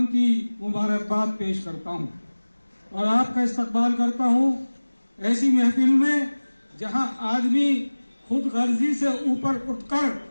की मुबारकबाद पेश करता हूँ और आपका इस्तकबाल करता हूँ ऐसी महफिल में जहाँ आदमी खुद गर्जी से ऊपर उठकर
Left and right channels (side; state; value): both; inverted; correlation -1.00